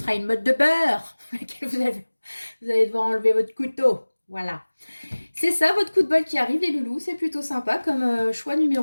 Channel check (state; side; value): inverted; both; correlation -1.00